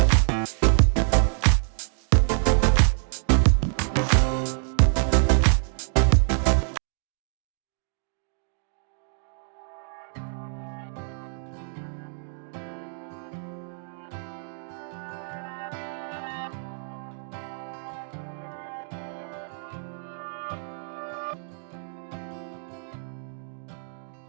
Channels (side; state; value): left; silent; 61 dB below the other